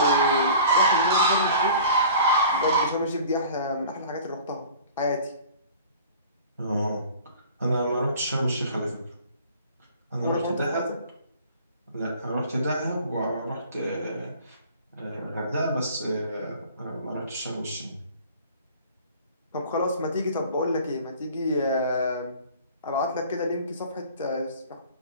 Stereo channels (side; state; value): both; inverted; correlation -0.45